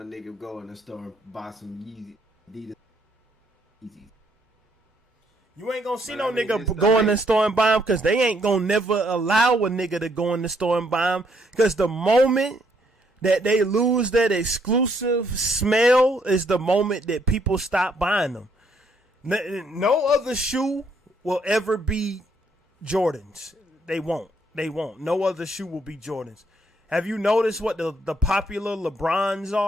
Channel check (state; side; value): normal; both; correlation 0.70